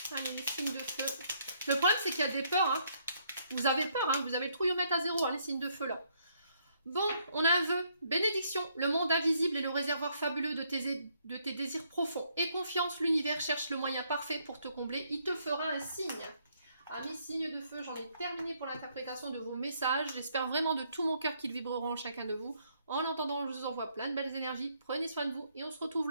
Allez, les signes de feu. Le problème, c'est qu'il y a des peurs. Hein. Vous avez peur, hein. Vous avez le trouillomètre à zéro, hein, les signes de feu là. Bon, on a un vœu. Bénédiction, le monde invisible est le réservoir fabuleux de tes désirs profonds. Et confiance, l'univers cherche le moyen parfait pour te combler. Il te fera un signe. Amis signes de feu, j'en ai terminé pour l'interprétation de vos messages. J'espère vraiment de tout mon cœur qu'ils vibreront en chacun de vous. En attendant, je vous envoie plein de belles énergies. Prenez soin de vous et on se retrouve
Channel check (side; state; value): both; inverted; correlation -0.70